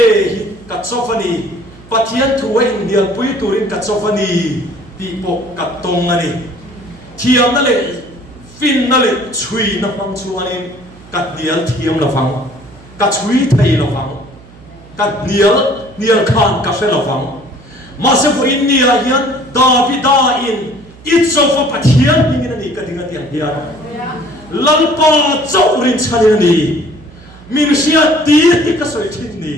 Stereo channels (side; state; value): right; noise; hum, 22 dB below the sound